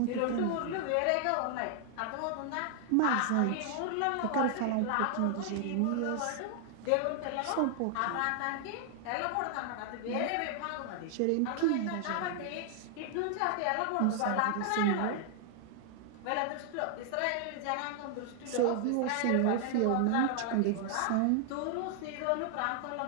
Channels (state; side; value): different; both; correlation 0.00